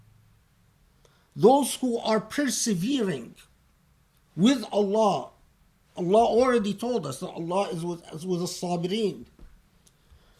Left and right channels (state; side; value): identical; both; correlation 1.00